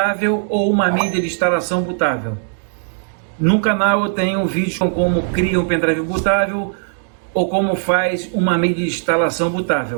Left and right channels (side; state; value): left; silent; digital silence